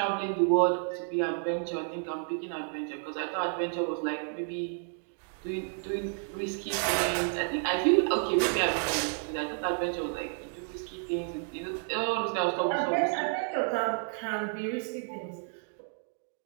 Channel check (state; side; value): silent; left; 57 dB below the other